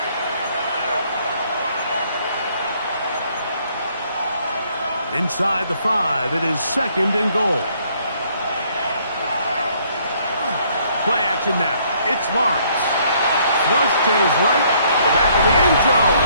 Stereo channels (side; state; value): both; inverted; correlation -0.65